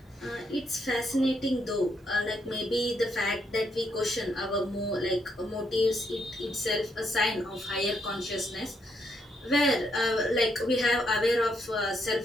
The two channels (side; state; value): both; normal; correlation 0.76